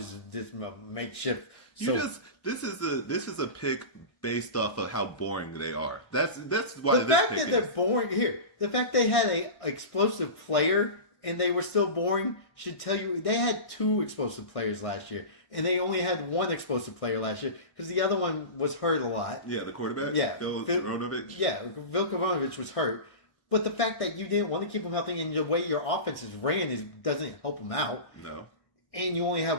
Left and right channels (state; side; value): late; right; 1.6 ms